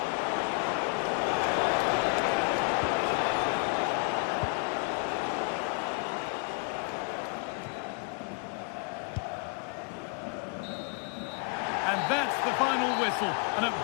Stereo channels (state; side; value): quieter; right; 37.6 dB